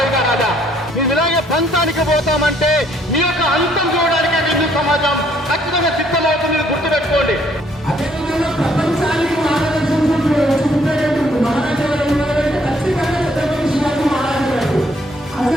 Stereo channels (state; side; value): normal; both; correlation 0.66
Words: का राजा. మీరు ఇలాగే పంతానికి పోతామంటే మీ యొక్క అంతం చూడడానికి హిందూ సమాజం ఖచ్చితంగా సిద్ధమవుతుంది. గుర్తుపెట్టుకోండి. అదేవిధంగా ప్రపంచానికి మార్గదర్శనం చూపేటప్పుడు మహారాజా గారు ఉన్నారంటే ఖచ్చితంగా ఛత్రపతి శివాజీ మహారాజు గారు.